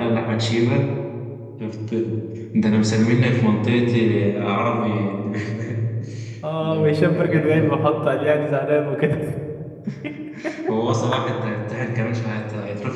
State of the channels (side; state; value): both; identical; correlation 1.00